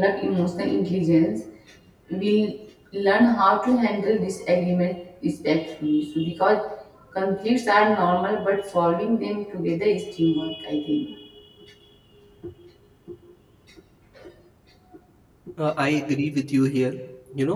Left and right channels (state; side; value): identical; both; correlation 1.00